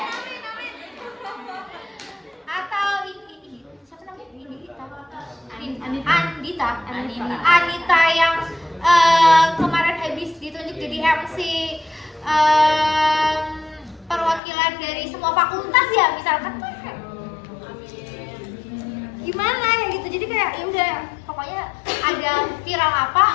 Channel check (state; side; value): drops out; right; at 14.4 s